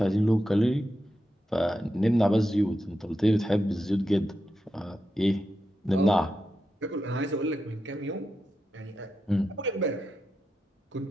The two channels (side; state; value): both; normal; correlation 0.88